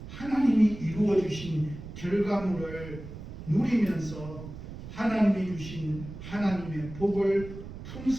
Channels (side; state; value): right; noise; rumble, 12 dB below the sound